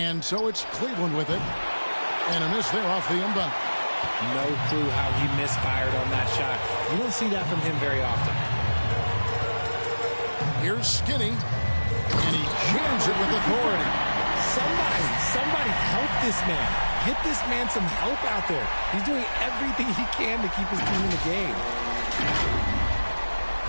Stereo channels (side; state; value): both; inverted; correlation -1.00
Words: so it's Cleveland with it. And a miss there off the inbound. No clue how he misfired on that shot. You don't see that from him very often. Here's Skinny. And he jams it with authority. Somebody help this man. Get this man some help out there. He's doing everything he can to keep his team in the game.